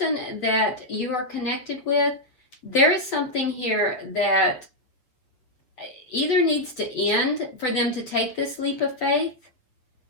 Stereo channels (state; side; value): late; right; 7.8 ms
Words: that you are connected with, there is something here that either needs to end for them to take this leap of faith.